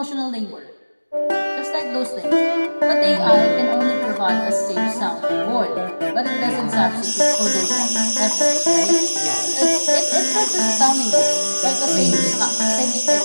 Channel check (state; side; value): inverted; both; correlation -1.00